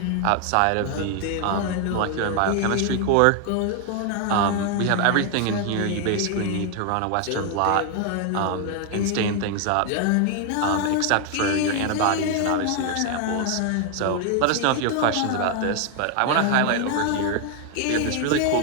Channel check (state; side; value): different; both; correlation 0.00